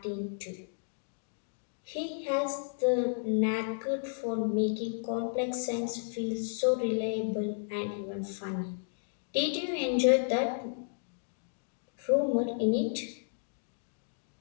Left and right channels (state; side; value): silent; right; digital silence